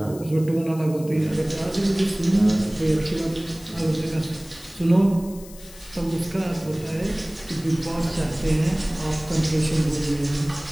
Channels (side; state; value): left; noise; hiss, 19 dB below the sound